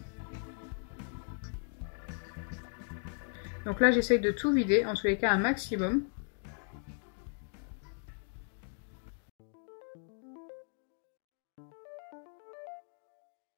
Donc là, j'essaye de tout vider, en tous les cas un maximum.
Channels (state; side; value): silent; right; 54 dB below the other